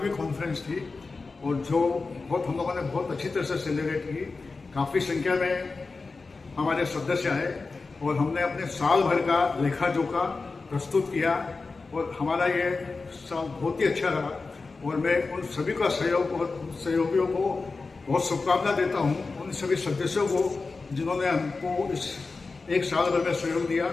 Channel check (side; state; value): right; quieter; 4.0 dB